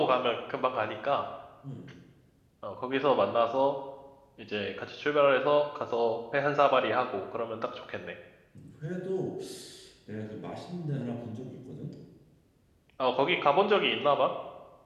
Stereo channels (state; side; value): identical; both; correlation 1.00